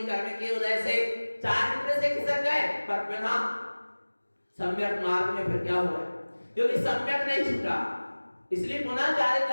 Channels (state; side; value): inverted; both; correlation -1.00